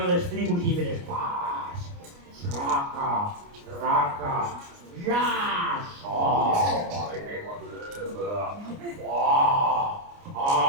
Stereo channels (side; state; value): left; late; 29 ms